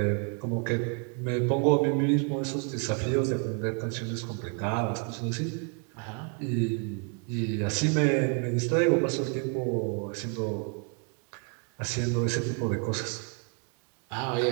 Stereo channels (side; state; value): left; quieter; 38.2 dB